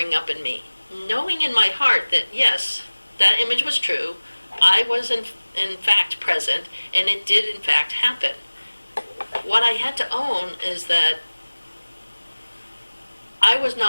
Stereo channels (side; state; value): both; inverted; correlation -1.00